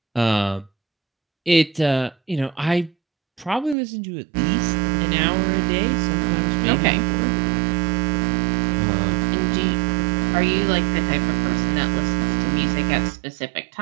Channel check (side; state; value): left; drops out; at 3.8 s